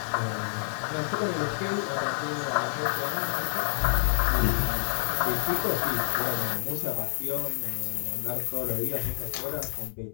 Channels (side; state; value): right; silent; digital silence